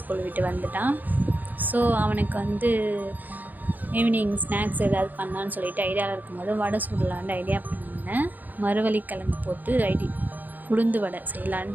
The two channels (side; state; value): left; late; 0.084 ms